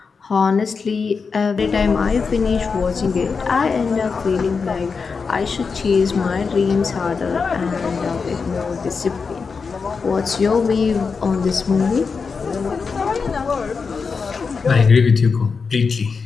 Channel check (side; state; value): right; quieter; 5.1 dB